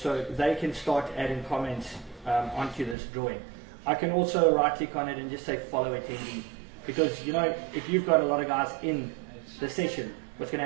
they can start adding comments onto this drawing. I can also right click on it and just say follow attendee, because you know, if you've got a lot of guys in the session, what's going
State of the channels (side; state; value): left; drops out; at 3.0 s